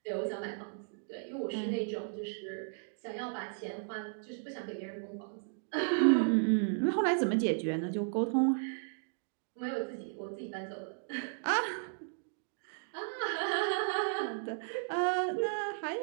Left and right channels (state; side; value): silent; left; digital silence